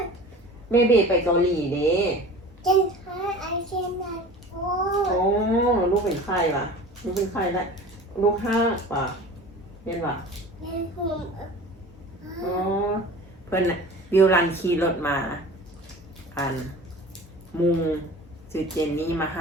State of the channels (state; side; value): normal; both; correlation 0.40